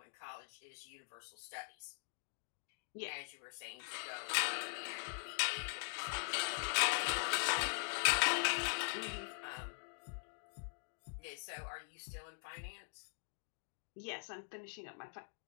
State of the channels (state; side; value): silent; right; digital silence